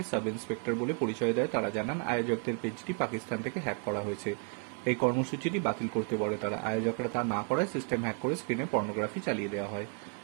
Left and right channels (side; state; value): left; quieter; 39.8 dB